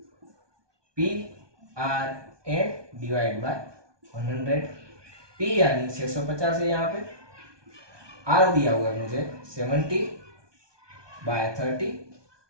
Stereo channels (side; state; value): left; late; 1.2 ms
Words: P R N divide by 100। P यानी 650 है, यहाँ पे आर दिया हुआ है मुझे